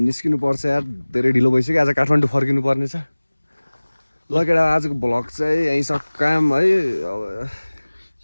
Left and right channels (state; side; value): inverted; both; correlation -1.00